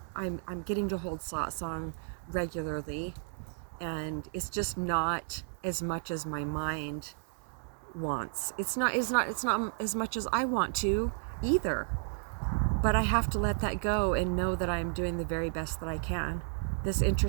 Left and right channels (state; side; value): silent; left; digital silence